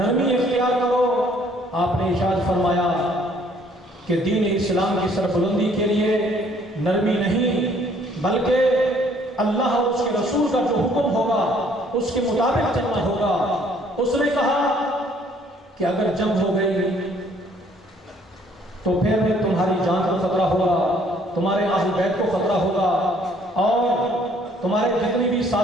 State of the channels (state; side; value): normal; both; correlation 0.61